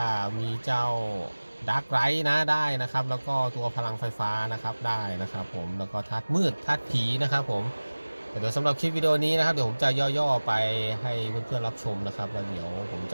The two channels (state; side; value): inverted; both; correlation -1.00